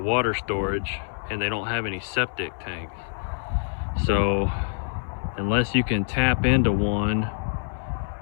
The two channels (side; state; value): right; silent; 61 dB below the other